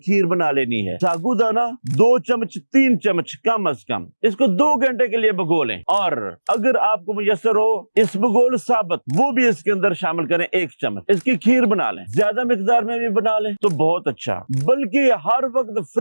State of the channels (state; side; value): inverted; both; correlation -1.00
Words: बना लेनी है। सागुदाना 2 चम्मच 3 चम्मच कम अज कम, इसको 2 घंटे के लिए भिगो लें। और अगर आपको मुयसर हो इसबगोल साबत, वो भी इसके अंदर शामिल करें 1 चम्मच। इसकी खीर बना लें, ज्यादा मिकदार में भी बना लें तो बहुत अच्छा। बल्कि हर वक्त